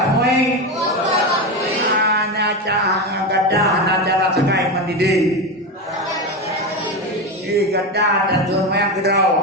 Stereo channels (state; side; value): normal; both; correlation 0.17